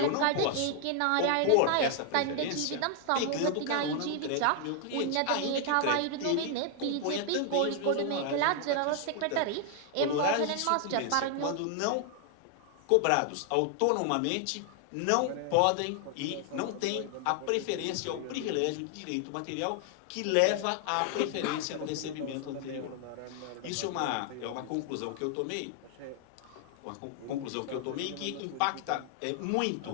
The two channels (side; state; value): both; different; correlation 0.00